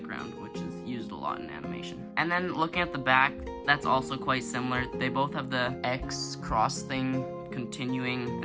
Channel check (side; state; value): both; identical; correlation 1.00